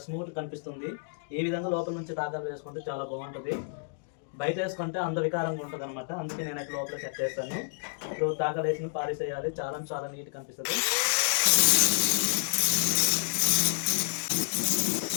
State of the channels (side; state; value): right; silent; digital silence